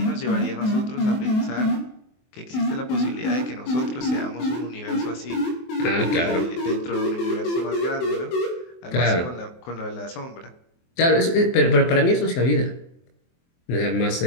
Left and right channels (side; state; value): right; late; 23 ms